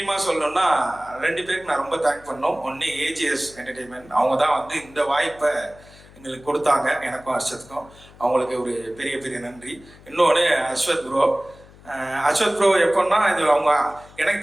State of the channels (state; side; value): noise; left; hum, 23 dB below the sound